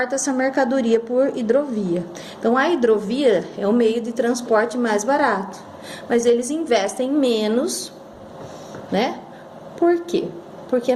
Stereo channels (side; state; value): both; identical; correlation 1.00